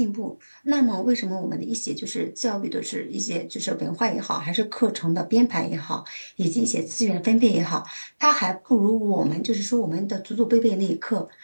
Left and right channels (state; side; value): inverted; both; correlation -1.00